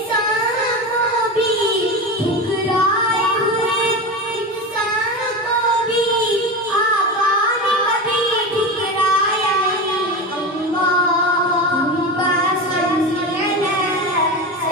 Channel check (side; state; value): both; normal; correlation 0.23